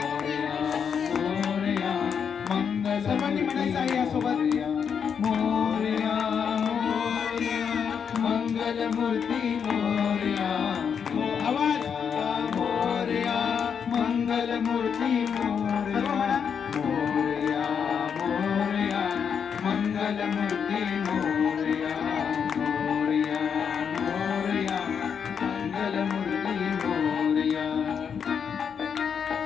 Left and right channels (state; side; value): quieter; right; 7.1 dB